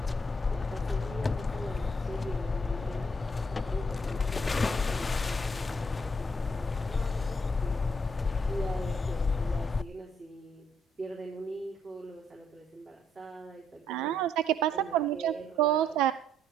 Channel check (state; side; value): normal; both; correlation 0.71